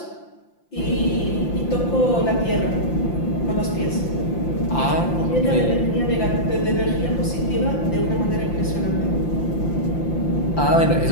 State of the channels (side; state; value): right; late; 5.8 ms